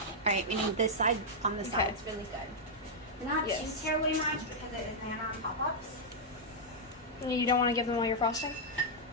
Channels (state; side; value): normal; both; correlation -0.06